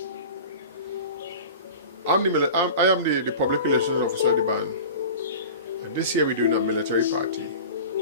I am the public relations officer of the band, and this year we're doing a military party,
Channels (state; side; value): inverted; both; correlation -0.36